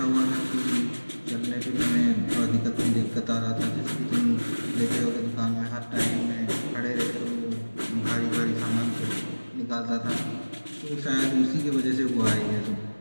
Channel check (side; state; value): both; inverted; correlation -1.00